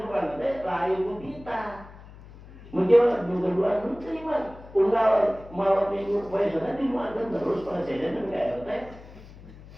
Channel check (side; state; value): left; noise; hum, 19 dB below the sound